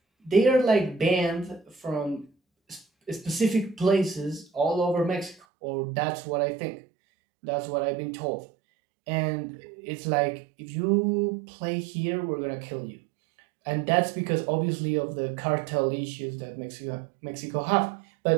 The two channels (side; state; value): left; drops out; at 5.4 s